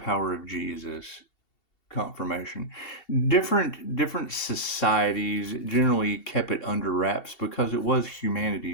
of Jesus. Confirmation. Different societies generally kept it under wraps because it was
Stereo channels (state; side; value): late; right; 2.7 ms